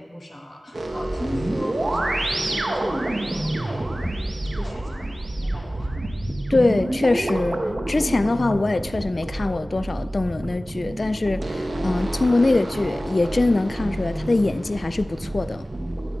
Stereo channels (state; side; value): normal; both; correlation 0.97